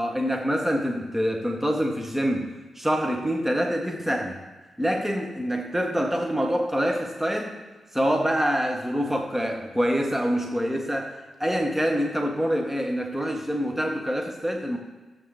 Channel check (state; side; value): normal; both; correlation 0.94